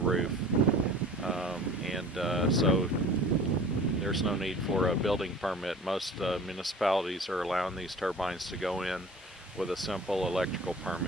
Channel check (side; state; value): both; normal; correlation 0.43